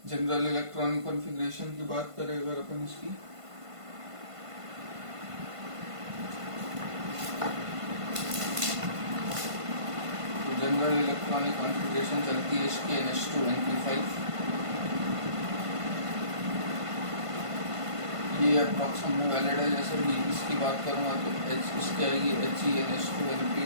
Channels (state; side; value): late; left; 1.5 ms